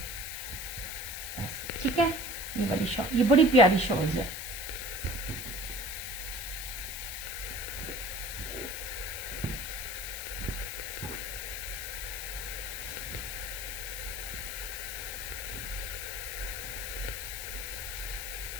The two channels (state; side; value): noise; left; hiss, 7 dB below the sound